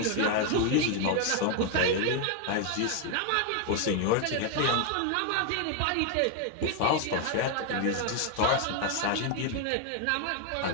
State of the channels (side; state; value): both; different; correlation 0.01